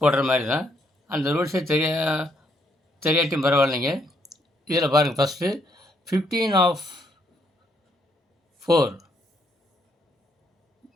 போடுற மாதிரி தான். அந்த ரூல்ஸே தெரியாட்டியும் பரவாயில்லைங்க. இதில் பாருங்கள், ஃபஸ்ட்டு 15 of 4,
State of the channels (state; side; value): normal; both; correlation 0.73